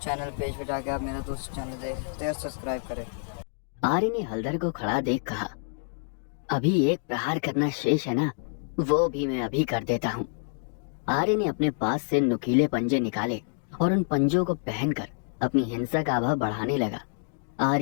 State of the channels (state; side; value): silent; right; 60 dB below the other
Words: चैनल पेज पे जाके आप मेरा दूसरा चैनल देख सकते हैं और सब्सक्राइब करें। आर्य ने हलदर को खड़ा देख कहा, अभी एक प्रहार करना शेष है ना, वो भी मैं अभी कर देता हूँ। आर्य ने अपने पास से नुकीले पंजे निकाले और उन पंजों को पहनकर अपनी हिंसक आभा बढ़ाने लगा।